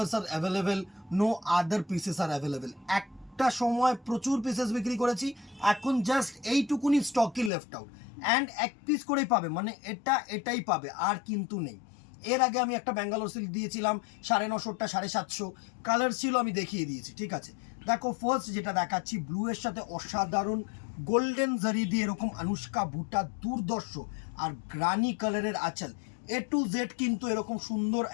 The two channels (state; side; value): drops out; right; at 7.5 s